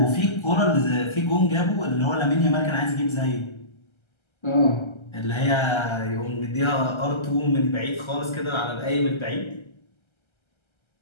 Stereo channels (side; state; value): right; late; 1.3 ms